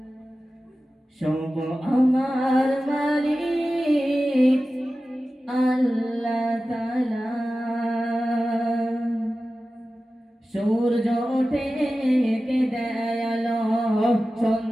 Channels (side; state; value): both; normal; correlation 0.95